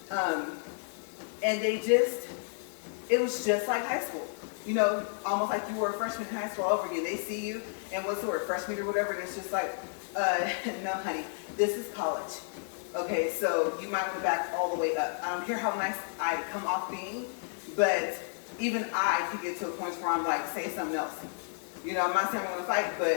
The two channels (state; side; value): silent; right; digital silence